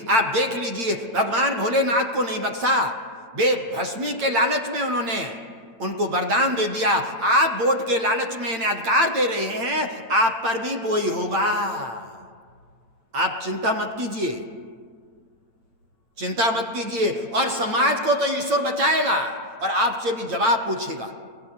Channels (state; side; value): late; left; 8.9 ms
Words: आप देख लीजिए, भगवान भोलेनाथ को नहीं बख्शा, वे भस्मी के लालच में उन्होंने उनको वरदान दे दिया, आप वोट के लालच में इन्हें अधिकार दे रहे हैं, आप पर भी वो ही होगा। आप चिंता मत कीजिए, चिंता मत कीजिए। और समाज को तो ईश्वर बचाएगा और आपसे भी जवाब पूछेगा।